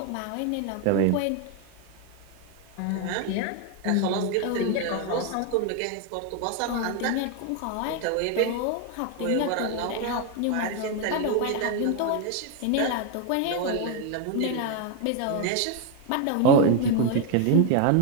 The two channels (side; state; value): both; different; correlation 0.01